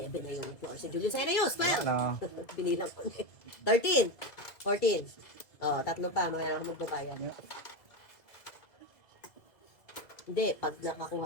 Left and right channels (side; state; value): right; late; 2.0 ms